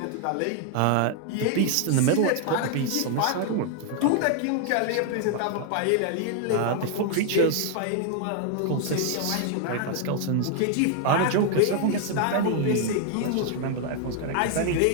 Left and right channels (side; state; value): both; different; correlation 0.00